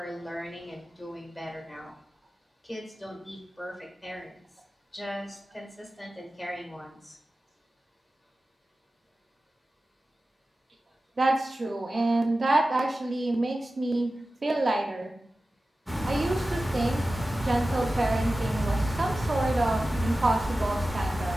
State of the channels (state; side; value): normal; both; correlation 0.95